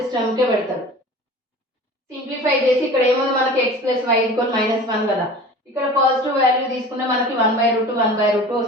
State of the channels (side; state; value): both; normal; correlation 0.39